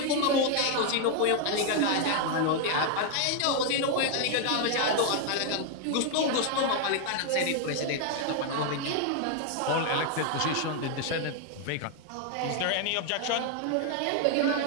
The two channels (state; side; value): different; both; correlation 0.00